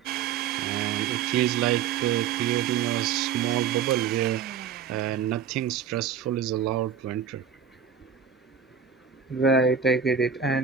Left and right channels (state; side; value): quieter; left; 7.2 dB